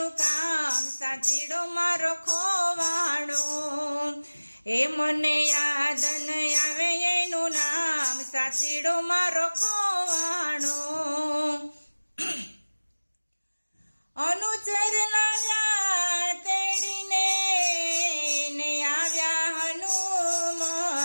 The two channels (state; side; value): inverted; both; correlation -1.00